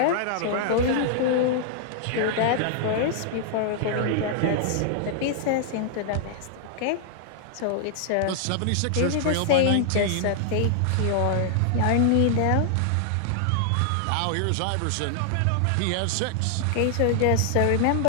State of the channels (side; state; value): both; different; correlation -0.01